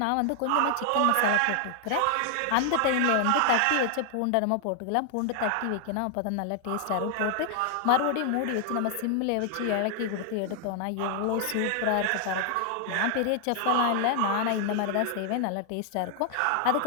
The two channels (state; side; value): different; both; correlation 0.00